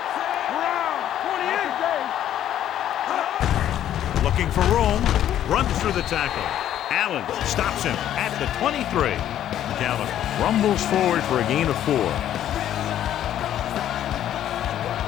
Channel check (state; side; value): quieter; right; 11.3 dB